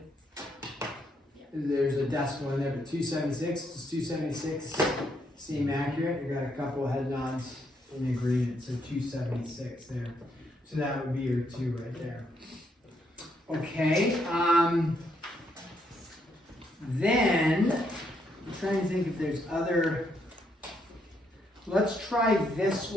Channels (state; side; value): normal; both; correlation 0.75